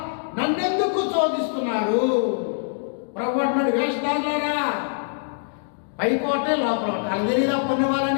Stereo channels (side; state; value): right; silent; digital silence